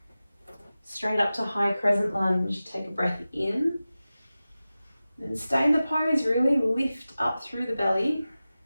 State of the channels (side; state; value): both; inverted; correlation -0.96